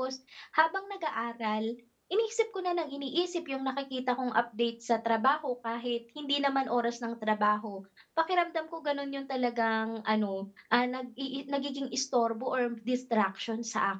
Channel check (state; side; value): identical; both; correlation 1.00